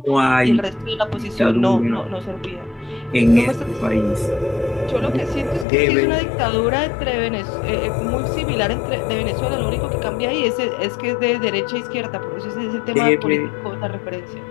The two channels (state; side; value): drops out; right; at 5.7 s